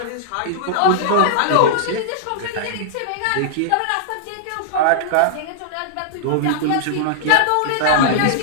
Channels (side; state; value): both; different; correlation -0.02